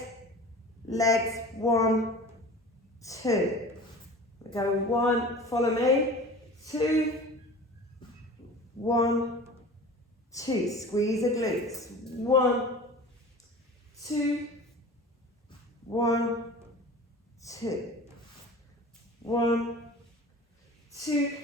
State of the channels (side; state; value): both; normal; correlation 0.39